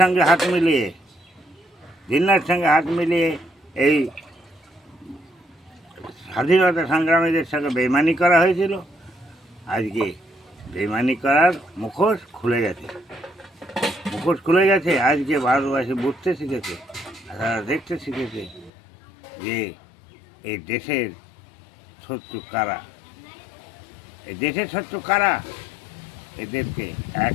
হাত মিলিয়ে এই স্বাধীনতা সংগ্রামীদের সঙ্গে বেইমানি করা হয়েছিল? আজকে বেইমানি করার মুখোশ খুলে গেছে। আজকে ভারতবাসী বুঝতে শিখেছে, তারা দেখতে শিখেছে যে এই দেশের শত্রু কারা। এদেরকে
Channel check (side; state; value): right; drops out; at 18.7 s